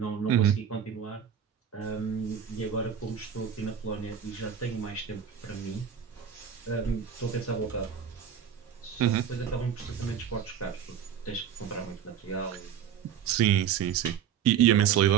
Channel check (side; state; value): left; quieter; 8.4 dB